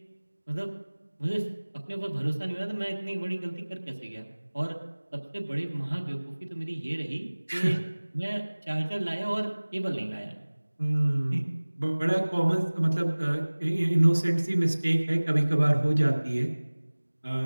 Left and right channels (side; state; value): both; inverted; correlation -1.00